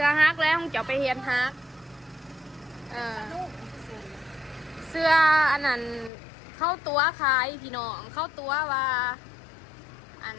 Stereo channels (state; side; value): drops out; right; at 6.1 s